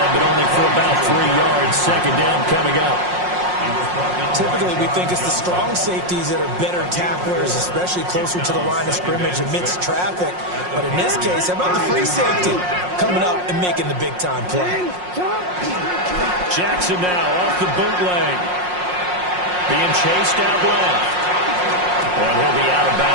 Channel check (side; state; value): left; late; 5.6 ms